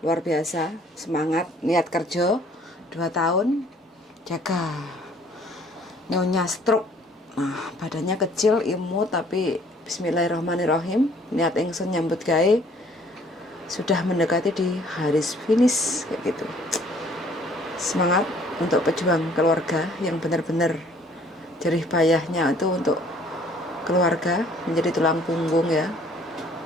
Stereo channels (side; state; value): both; normal; correlation 0.58